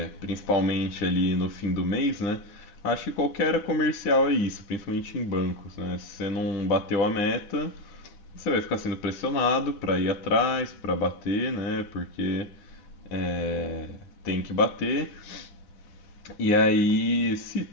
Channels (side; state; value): right; late; 10 ms